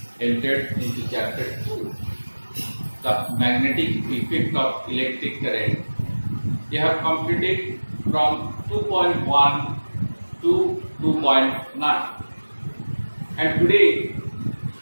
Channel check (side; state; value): both; inverted; correlation -1.00